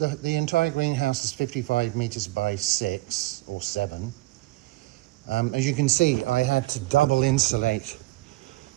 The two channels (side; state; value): left; quieter; 19.3 dB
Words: entire greenhouse is 55 meters by 6 or 7. As you can see, I had to double insulate.